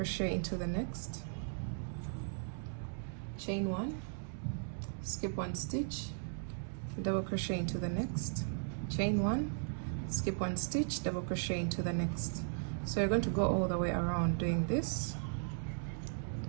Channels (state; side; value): silent; left; digital silence